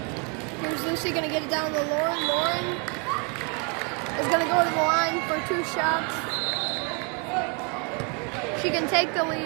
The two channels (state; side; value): quieter; left; 35.6 dB